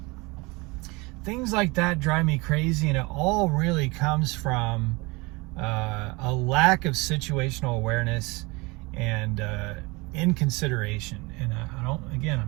things like that drive me crazy. And it all really comes from a lack of situational awareness and inconsideration. And I'm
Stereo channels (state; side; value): quieter; left; 25.2 dB